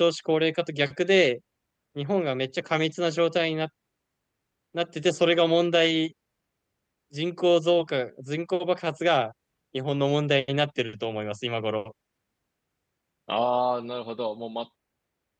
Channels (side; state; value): both; identical; correlation 1.00